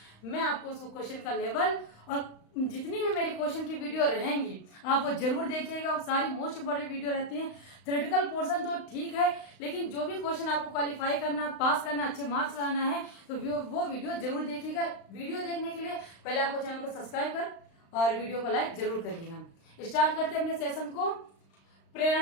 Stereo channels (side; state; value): right; late; 35 ms